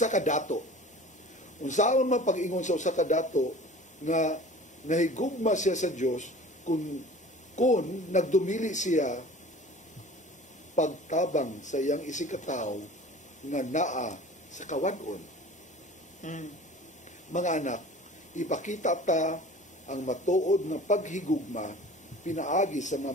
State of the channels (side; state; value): both; normal; correlation 0.43